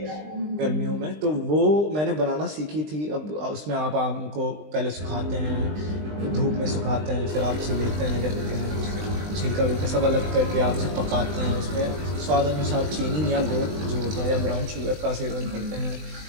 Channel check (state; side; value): late; left; 20 ms